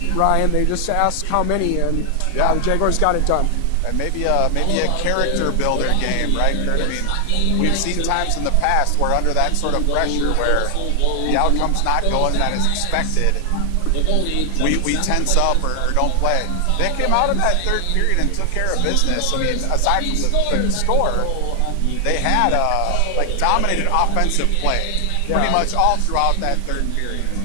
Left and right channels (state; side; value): different; both; correlation 0.00